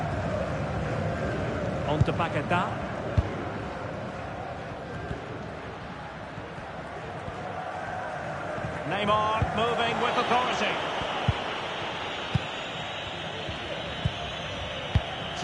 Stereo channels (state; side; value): identical; both; correlation 1.00